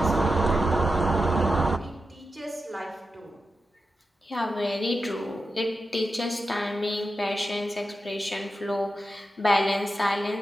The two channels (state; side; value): normal; both; correlation 0.90